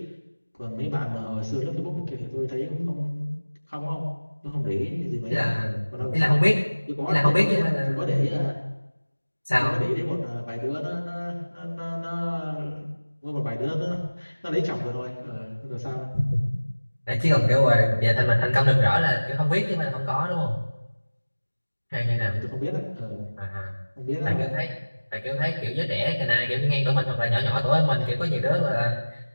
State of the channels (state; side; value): inverted; both; correlation -1.00